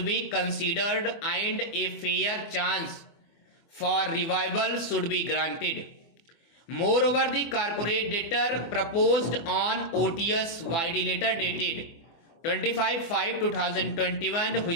be considered and a fair chance for revival should be granted. Moreover, the corporate debtor proposed on OTS YD letter dated 25/5/2021,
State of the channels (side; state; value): right; late; 24 ms